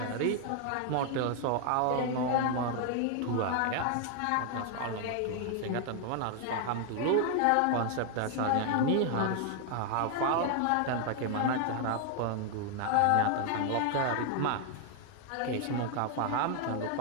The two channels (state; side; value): different; both; correlation 0.00